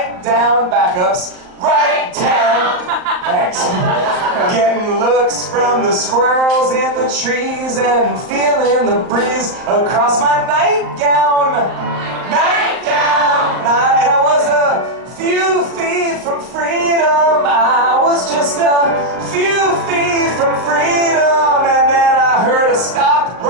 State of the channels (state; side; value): late; left; 38 ms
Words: down, backups, right down. Thanks. Getting looks from the squirrels in the trees and feeling the breeze across my nightgown. And I was a few feet from freedom. I was just a few feet from freedom. And then I heard a stop